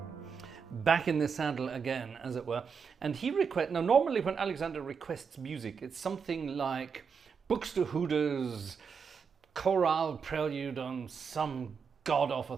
back in the saddle again, as it were. And he now normally when Alexander requests music, it's something like Buxtehude's chorale prelude on some god-awful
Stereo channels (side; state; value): left; quieter; 6.1 dB